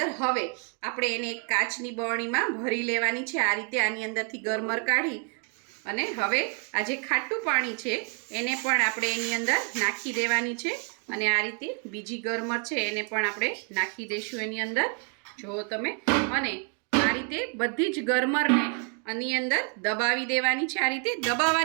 હવે આપણે એને એક કાચની બરણીમાં ભરી લેવાની છે. આ રીતે આની અંદરથી ગરમર કાઢી અને હવે આ જે ખાટું પાણી છે એને પણ આપણે એની અંદર નાખી દેવાની છે. અને આ રીતે બીજી ગરમર છે એને પણ આપણે નાખી દઈશું એની અંદર, જુઓ તમે. અને આ રીતે બધી જ ગરમરને આની અંદર દબાવી દેવાની છે. આ રીતે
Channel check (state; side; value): quieter; left; 39.8 dB